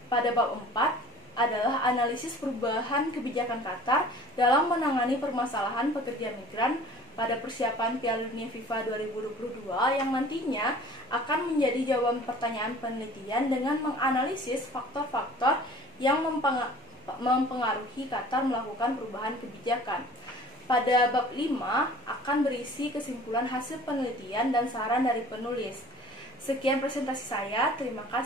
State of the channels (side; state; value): both; normal; correlation 0.47